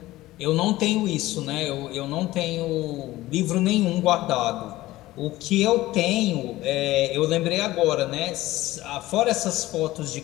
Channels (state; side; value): quieter; right; 17.2 dB